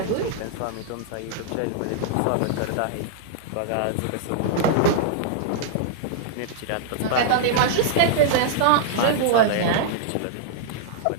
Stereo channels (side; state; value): both; different; correlation -0.01